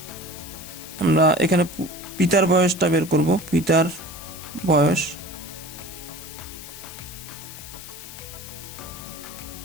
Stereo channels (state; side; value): noise; left; hiss, 13 dB below the sound